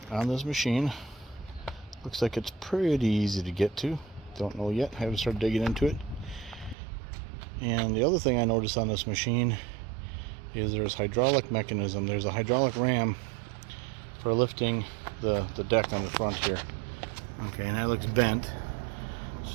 on this machine. Looks like it's pretty easy to get to. Don't know yet, haven't started digging into it. And the other thing I noticed on this machine is there's hydraulic mechanism. There's a hydraulic ram for lifting the deck on the front here. Okay, and that looks bent,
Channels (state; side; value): drops out; left; at 6.8 s